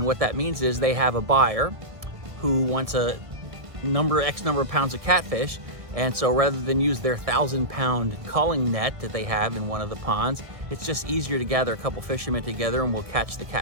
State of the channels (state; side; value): late; left; 1.7 ms